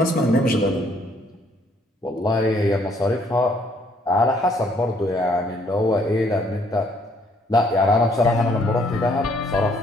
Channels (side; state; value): both; normal; correlation 0.65